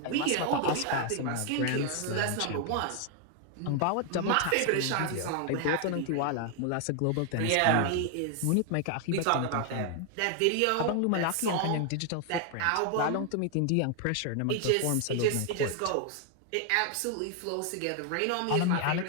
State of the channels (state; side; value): different; both; correlation 0.00